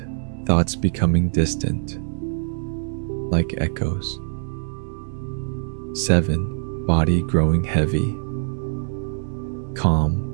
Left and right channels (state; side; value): silent; left; digital silence